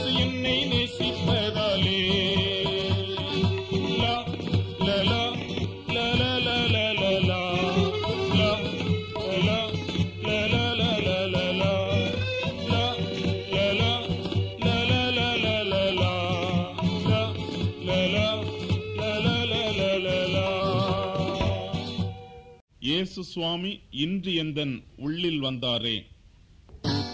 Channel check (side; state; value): both; identical; correlation 1.00